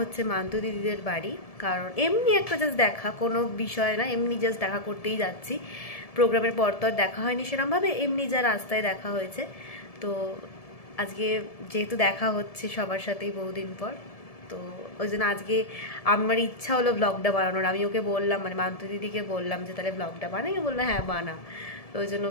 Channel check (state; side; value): late; right; 1.7 ms